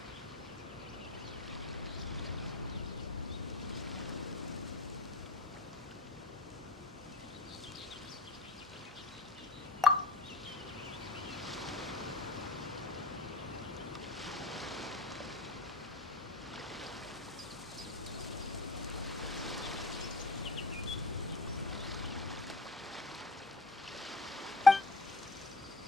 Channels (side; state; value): right; quieter; 3.1 dB